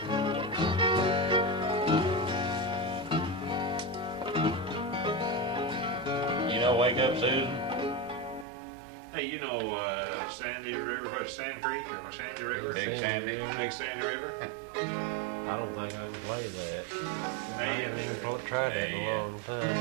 You know, wake up, Susan. Hey, you know Sandy River, or Sand Creek, or Sandy River? Big Sandy. Big Sandy River? I don't think I can play that. And I they haven't in there. tried that in a Yeah. long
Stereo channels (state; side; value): drops out; left; at 8.5 s